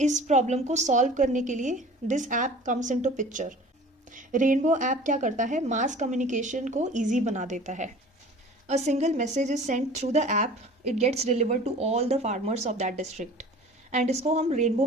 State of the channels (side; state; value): both; normal; correlation 0.44